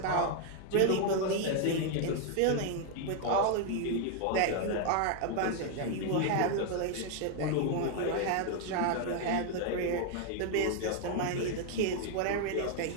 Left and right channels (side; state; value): both; different; correlation 0.00